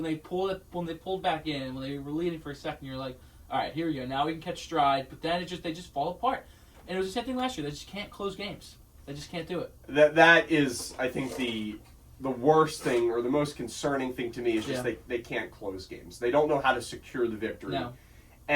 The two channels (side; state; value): both; identical; correlation 1.00